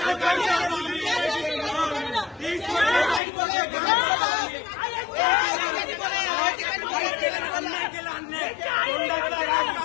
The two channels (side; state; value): right; drops out; at 3.2 s